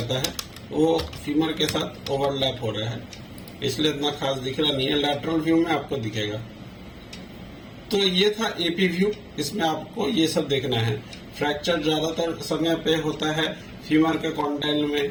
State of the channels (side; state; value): both; identical; correlation 1.00